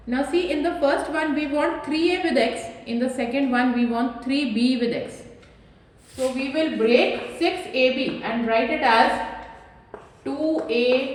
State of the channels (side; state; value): both; identical; correlation 1.00